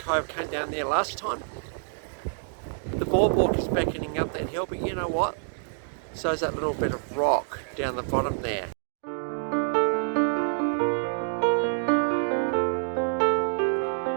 came down there last time. The boardwalk is beckoning up that hill, but you know what? So is that little bit of rock down the bottom there.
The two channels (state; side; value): silent; left; digital silence